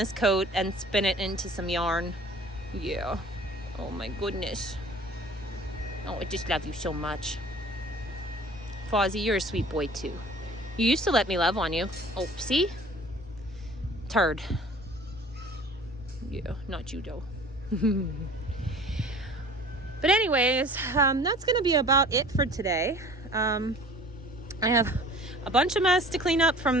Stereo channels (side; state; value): both; normal; correlation 0.46